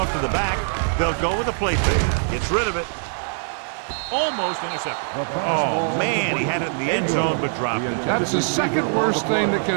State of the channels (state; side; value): silent; left; digital silence